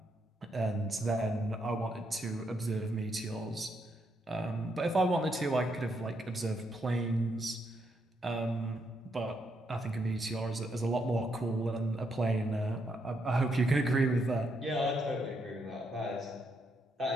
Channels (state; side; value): normal; both; correlation 0.77